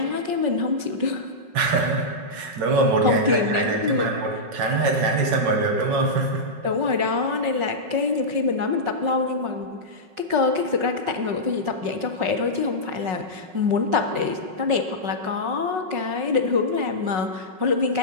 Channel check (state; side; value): late; left; 5.4 ms